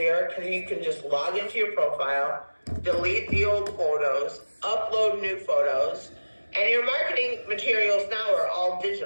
because you can just log into your profile, delete the old photos, upload new photos, and your marketing materials now are all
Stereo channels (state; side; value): inverted; both; correlation -1.00